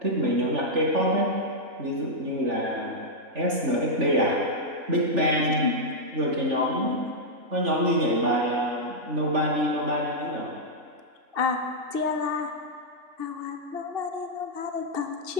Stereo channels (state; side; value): late; left; 3.4 ms